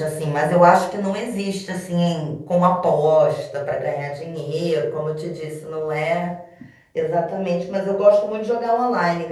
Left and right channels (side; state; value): both; identical; correlation 1.00